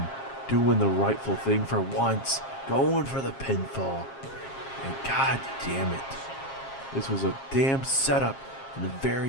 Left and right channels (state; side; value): late; right; 7.4 ms